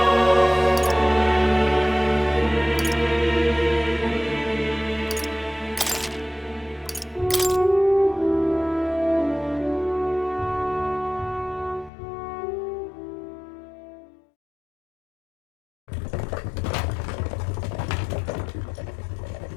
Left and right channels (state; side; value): drops out; right; at 11.9 s